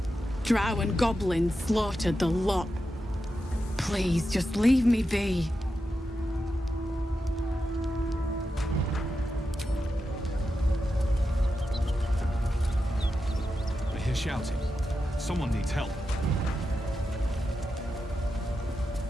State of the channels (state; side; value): normal; both; correlation 0.89